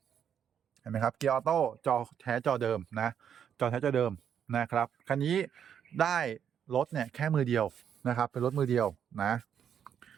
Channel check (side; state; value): left; quieter; 8.5 dB